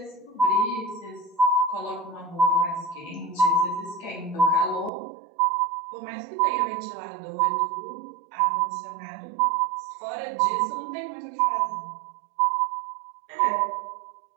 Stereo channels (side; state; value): left; drops out; at 4.9 s